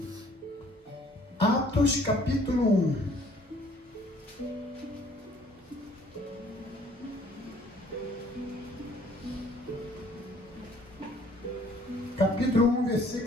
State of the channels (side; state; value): both; normal; correlation 0.58